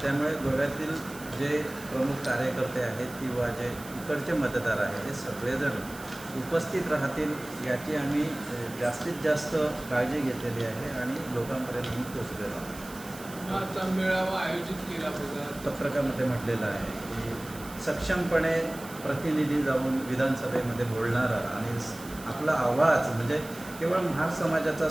त्यामुळे गोव्यातील जे प्रमुख कार्यकर्ते आहेत किंवा जे इकडचे मतदार आहेत हे सगळेजण उपस्थित राहतील याची आम्ही जास्तीत जास्त काळजी घेतलेली आहे आणि लोकांपर्यंत पोचलेलो आहोत. आता मेळावा आयोजित केला बघा, पत्रकामध्ये म्हटलेलं आहे की सक्षमपणे प्रतिनिधी जाऊन विधानसभेमध्ये बोलणारा आणि आपला आवाज म्हणजे केवळ महार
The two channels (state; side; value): noise; right; hiss, 16 dB below the sound